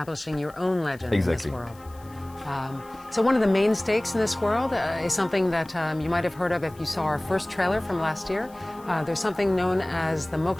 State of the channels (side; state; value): left; noise; hiss, 26 dB below the sound